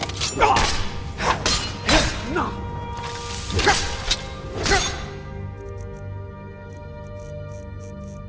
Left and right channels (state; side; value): identical; both; correlation 1.00